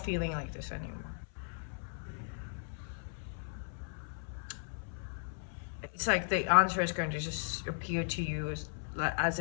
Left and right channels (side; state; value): right; silent; 53 dB below the other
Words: feeling like this anymore. It's like the answer is going to just appear to you as